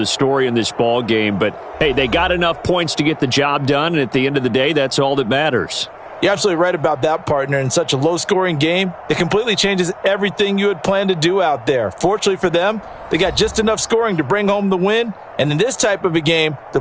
story in this ball game, but, hey, they got enough points to get the job done, and at the end of the day, that's all that matters. You're absolutely right about that, partner. In such a low-scoring game, it completely changes everything you had planned to do out there. Fortunately for them, they got just enough scoring to bring home the win, and in this type of a game, to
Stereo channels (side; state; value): both; identical; correlation 1.00